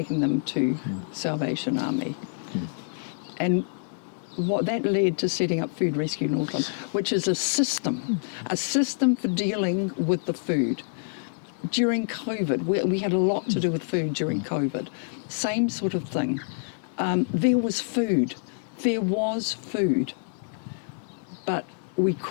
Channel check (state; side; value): silent; right; 60 dB below the other